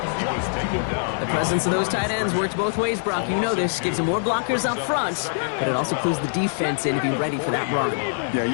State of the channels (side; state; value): right; silent; 63 dB below the other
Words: He was taken down. The presence of those tight ends works both ways, Brock. You know this. Gives them more blockers up front, but it also clues the defense in to be ready for that run. Yeah,